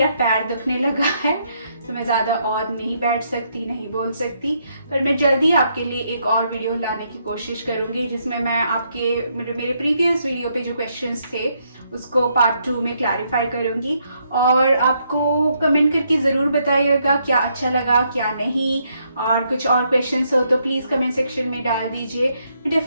पैर दुखने लगा है तो मैं ज़्यादा और नहीं बैठ सकती, नहीं बोल सकती. पर मैं जल्दी आपके लिए एक और वीडियो लाने की कोशिश करूँगी जिसमें मैं आपके मेरे प्रीवियस वीडियो पे जो क्वेश्चंस थे उसको पार्ट 2 में क्लैरिफाई करूँगी. और आपको कमेंट करके ज़रूर बताइएगा क्या अच्छा लगा क्या नहीं, और कुछ और क्वेश्चंस हो तो प्लीज़ कमेंट सेक्शन में डाल दीजिए. मैं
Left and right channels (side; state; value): both; inverted; correlation -0.75